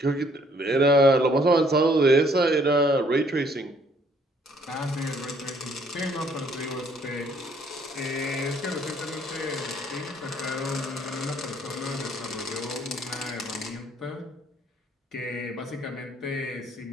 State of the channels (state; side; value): normal; both; correlation 0.64